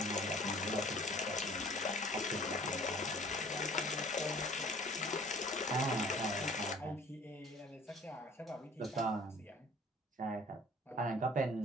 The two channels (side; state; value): both; normal; correlation 0.50